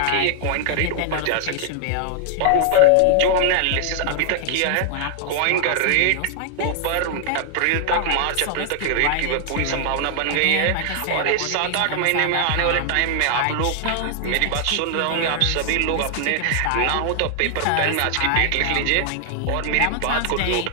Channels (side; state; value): both; different; correlation 0.00